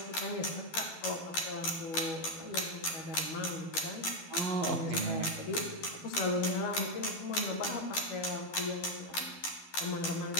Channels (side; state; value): right; late; 12 ms